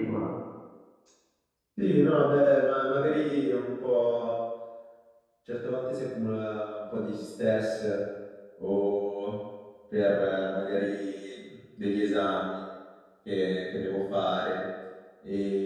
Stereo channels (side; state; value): both; identical; correlation 1.00